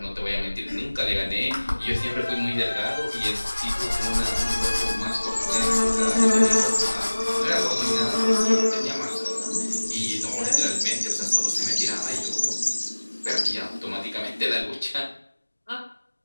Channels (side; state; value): both; inverted; correlation -1.00